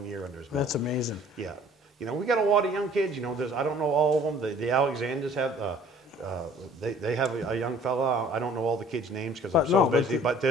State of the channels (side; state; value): both; normal; correlation 0.53